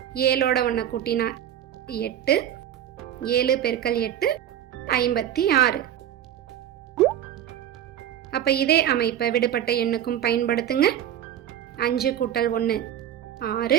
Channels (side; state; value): left; quieter; 10.8 dB